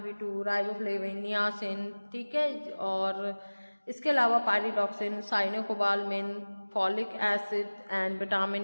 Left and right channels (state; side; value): inverted; both; correlation -1.00